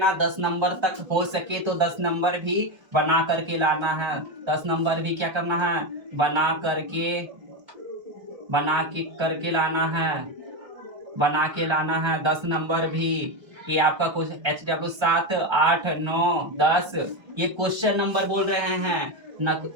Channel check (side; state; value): left; late; 1.3 ms